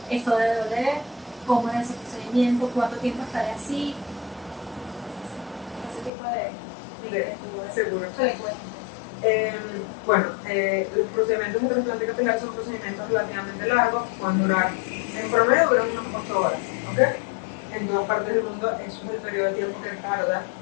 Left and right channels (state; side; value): drops out; right; at 6.1 s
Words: ¿esto debe doler? ¿Cómo es ese procedimiento? ¿Cuánto tiempo estaré así? Ese tipo de seguro. Los procedimientos de trasplante capilar son procedimientos relativamente largos, pueden durar, en promedio duran unas 8 horas, ¿ok? En todas partes del mundo eso es el periodo de tiempo que tarda